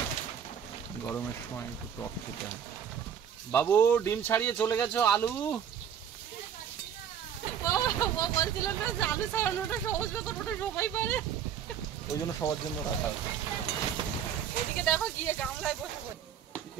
গরমের সময় একটু টক খেতে হয়। বাবু ডিম ছাড়িয়ে চলে গেছো, আলু ও বলছিল না যে আলু ছাড়ানোটা সহজ ব্যাপার, ওটা সবাই পারে। ওই জন্য সবার জন্য রাখা আছে। এদিকে দেখো গিয়ে গামলায় বসে পড়ি।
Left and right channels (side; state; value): left; quieter; 8.4 dB